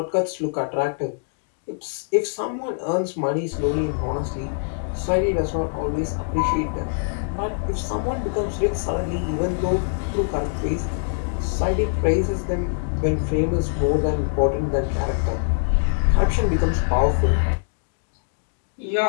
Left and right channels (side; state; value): right; silent; digital silence